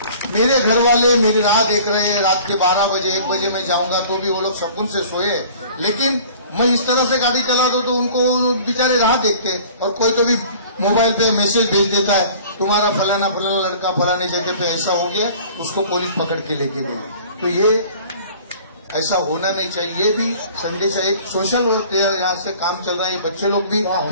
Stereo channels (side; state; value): both; inverted; correlation -0.48